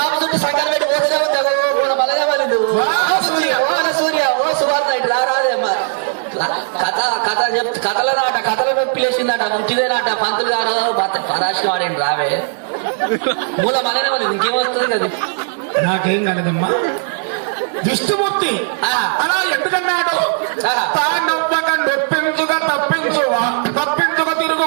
చుట్టూ సంకర పెట్టి పోతూనే ఉంటావు. మళ్ళా వాళ్ళు ఓ సూర్య ఓ సువార్త ఇట్లా రాదేమ్మా. కథల నాట కథల నొప్పి లేచిందట ముట్టిదేనాట. పంతులు గారు పరాశి వాడేంటి రావే మూల మళ్ళీ వాళ్ళు ఇంకేమొస్తుంది కదా. నాకేం కాలేదమ్మా. విష్ణుమూర్తి అలా ఎందుకన్నాడు? తానొప్పక నొప్పించుక తప్పించుక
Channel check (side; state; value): left; silent; 57 dB below the other